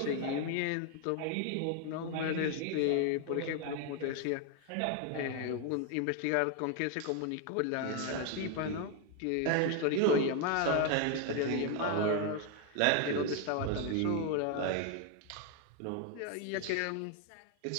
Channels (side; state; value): both; different; correlation 0.01